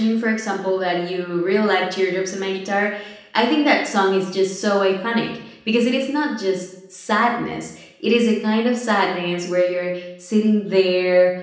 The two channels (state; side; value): identical; both; correlation 1.00